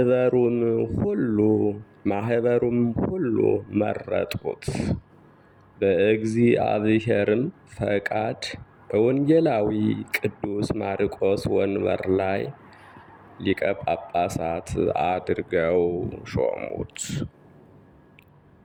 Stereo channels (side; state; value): both; identical; correlation 1.00